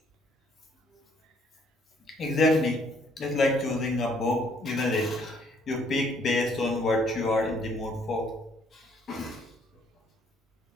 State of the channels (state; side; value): normal; both; correlation 0.65